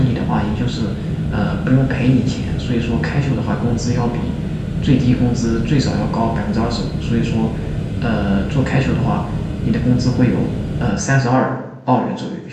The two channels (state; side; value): identical; both; correlation 1.00